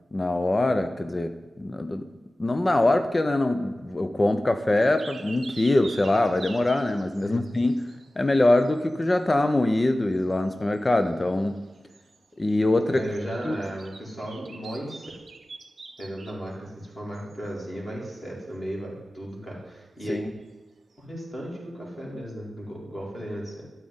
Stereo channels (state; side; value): normal; both; correlation 0.97